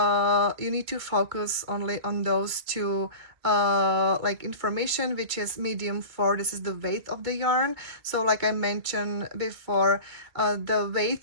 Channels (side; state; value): left; late; 2.2 ms